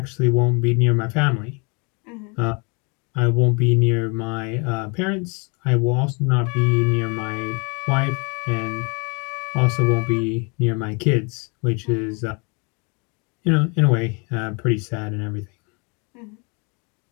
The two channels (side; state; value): right; quieter; 32.5 dB